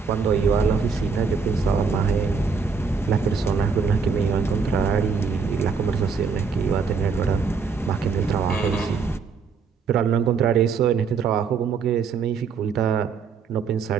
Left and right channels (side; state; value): left; quieter; 5.4 dB